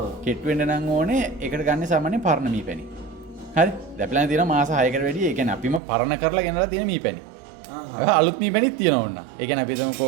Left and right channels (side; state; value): left; drops out; at 5.8 s